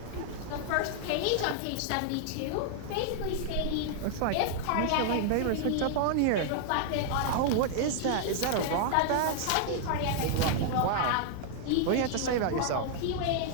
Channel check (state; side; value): different; both; correlation 0.00